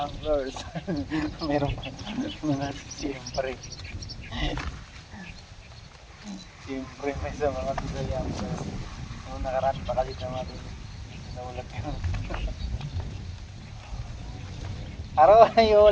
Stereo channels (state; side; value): identical; both; correlation 1.00